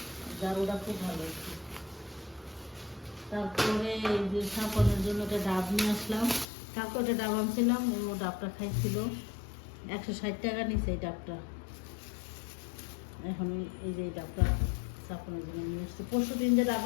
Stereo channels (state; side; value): drops out; right; at 6.5 s